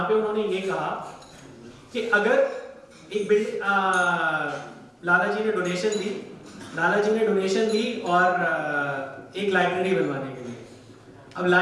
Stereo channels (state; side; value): identical; both; correlation 1.00